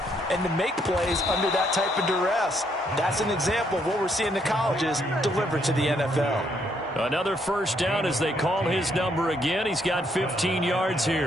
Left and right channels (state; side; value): normal; both; correlation 0.72